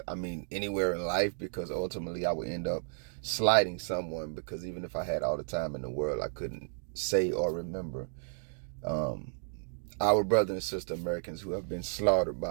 I mean anywhere in life, because ultimately I would end up slighting someone, because even if I had all the time in the world, I couldn't say or remember our brother and sister Americans who have been slaughtered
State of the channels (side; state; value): left; silent; digital silence